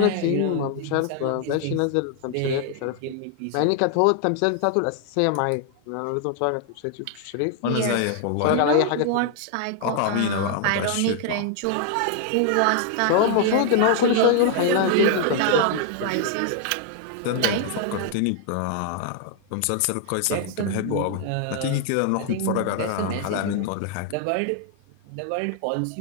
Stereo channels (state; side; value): different; both; correlation 0.00